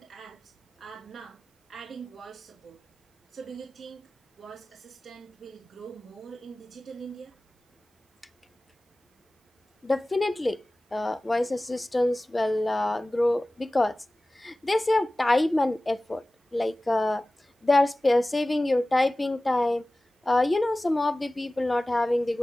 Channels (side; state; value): both; normal; correlation 0.97